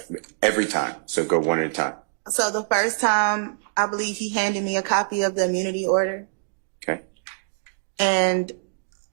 Every time. So go one at a time. So the first time, I believe he handed me a copy of the immunity order. Okay. And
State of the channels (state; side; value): silent; left; digital silence